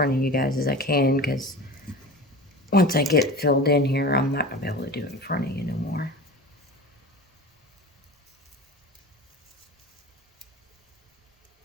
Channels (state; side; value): normal; both; correlation 0.33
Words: of you guys as I can, because once I get filled in here, I'm not gonna be able to do it in front of you no more.